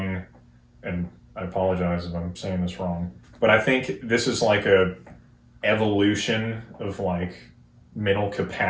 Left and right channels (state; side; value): identical; both; correlation 1.00